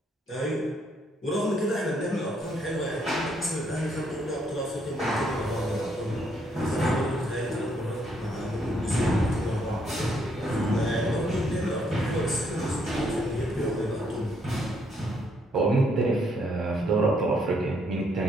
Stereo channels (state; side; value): normal; both; correlation 0.71